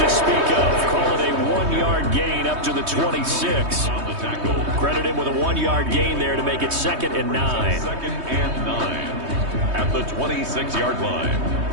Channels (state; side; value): late; left; 3.2 ms